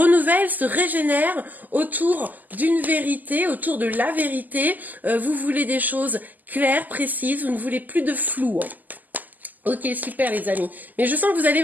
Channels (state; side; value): late; left; 0.083 ms